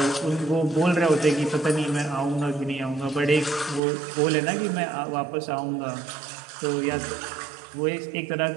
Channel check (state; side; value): drops out; left; at 3.8 s